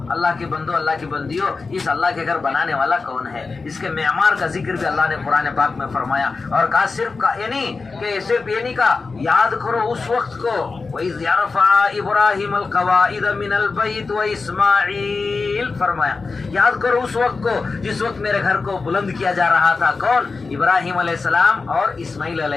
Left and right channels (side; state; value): right; quieter; 4.2 dB